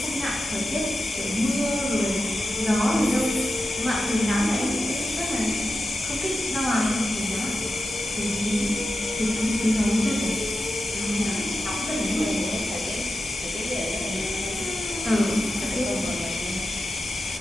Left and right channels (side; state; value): both; normal; correlation 0.90